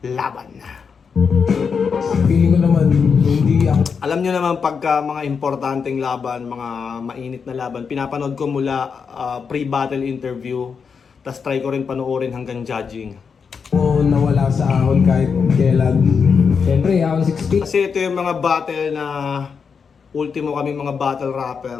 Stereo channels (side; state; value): right; quieter; 6.0 dB